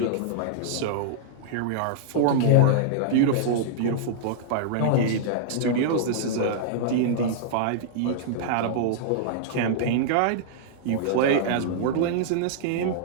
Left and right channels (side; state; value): both; different; correlation -0.02